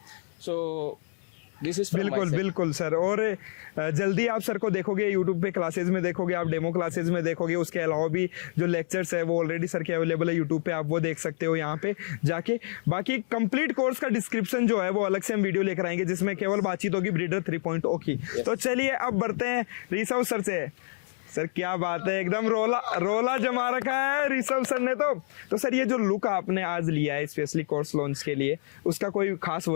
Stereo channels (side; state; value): right; silent; 60 dB below the other